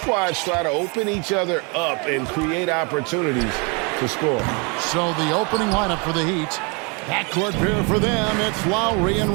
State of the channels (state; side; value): quieter; left; 31.8 dB